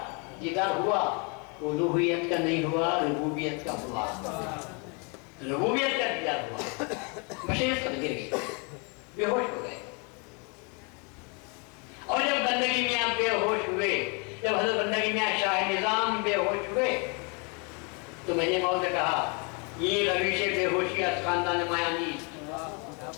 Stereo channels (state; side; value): quieter; right; 33.7 dB